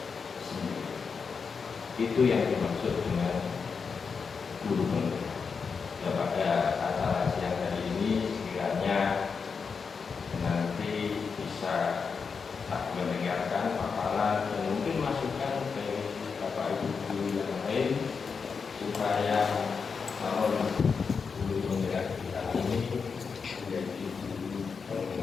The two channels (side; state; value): right; quieter; 5.5 dB